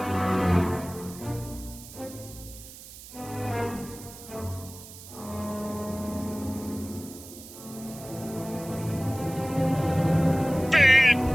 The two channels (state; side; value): noise; right; hiss, 16 dB below the sound